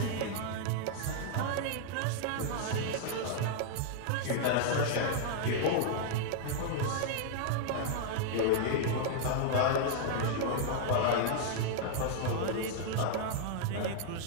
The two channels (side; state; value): both; different; correlation -0.01